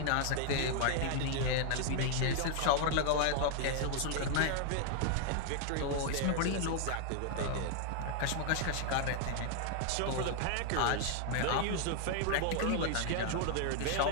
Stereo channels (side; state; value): both; different; correlation 0.00